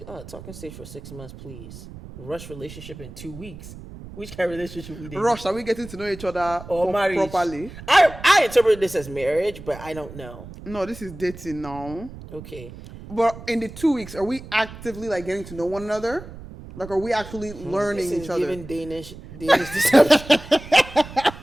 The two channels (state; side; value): noise; right; rumble, 15 dB below the sound